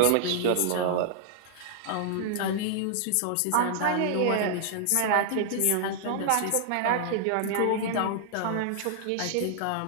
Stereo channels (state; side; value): different; both; correlation -0.01